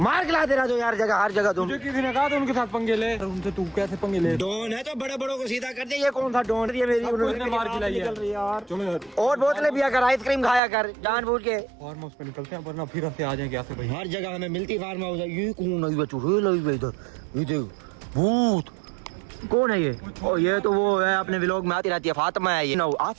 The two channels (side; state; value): left; drops out; at 10.6 s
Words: के लाते रहो यार जगह हर जगह तुम। मुझे किसी ने कहा था उनके साथ पंगे ले। उनसे तू कैसे पंगे ले? डॉन है तो बड़े बड़ों को सीधा कर दे। ये कौन सा डॉन? ये मेरी उसने मार खिलाई है। यार चलो यार और बोतलें पिया कर आइसक्रीम खाया कर जानबूझ के। फार्म हाउस पे निकलते हैं वरना फिर से आ जाएंगे ऐसे भाई। हर जगह हमें मिलती फार्म हाउस है। ये कौन है? ये चुड़ैल है इधर। ये देख भूत कौन है ये? ओ ये तो वो है अपने व्लॉग में आती रहती है फातिमा है ये।